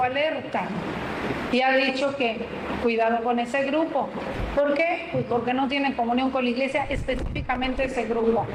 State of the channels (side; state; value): both; identical; correlation 1.00